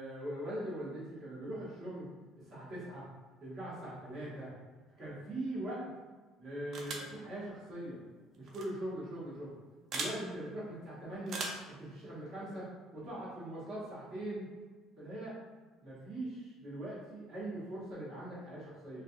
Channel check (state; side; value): normal; both; correlation 0.68